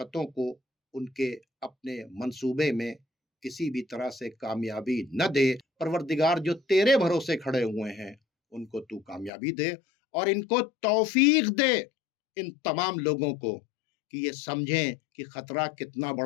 को उनके अपने मंसूबे में किसी भी तरह से कामयाबी न दे। परवरदिगार जो तेरे भरोसे खड़े हुए हैं उनको तू कामयाबी दे, और इनको तौफीक दे इन तमाम लोगों को कि ये समझें कि खतरा कितना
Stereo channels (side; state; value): right; drops out; at 9.3 s